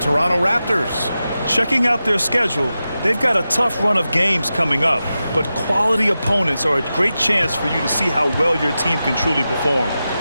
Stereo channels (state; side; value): inverted; both; correlation -0.92